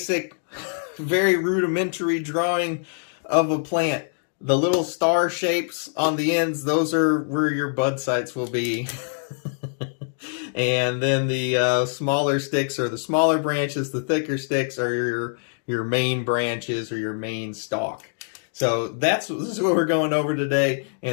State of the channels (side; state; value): right; silent; digital silence